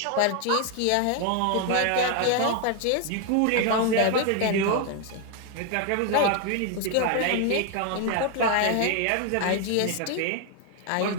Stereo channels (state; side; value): different; both; correlation 0.01